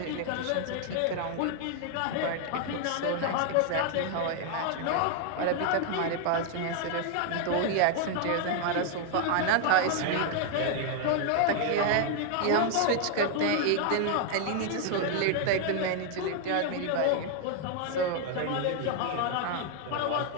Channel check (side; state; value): both; different; correlation 0.00